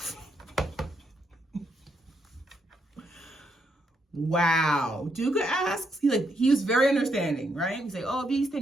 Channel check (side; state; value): both; normal; correlation 0.77